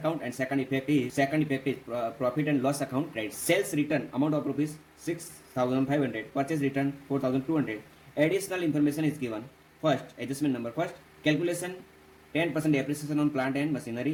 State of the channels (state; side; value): identical; both; correlation 1.00